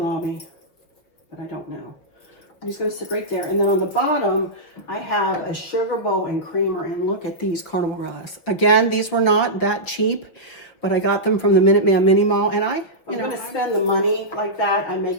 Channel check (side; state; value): right; late; 6.5 ms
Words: but I don't know. I'm just going to sit right there. And then on the bottom, I have a sugar bowl and creamer. And look at these carnival glass. Again, these were not that cheap, but I got them from the Minuteman Mini Mall. And I'm going to spend the money like that. I